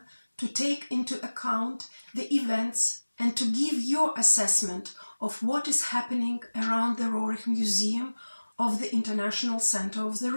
to take into account the events and to give your assessment of what is happening around the Roerich Museum of the International Center of the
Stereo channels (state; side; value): inverted; both; correlation -1.00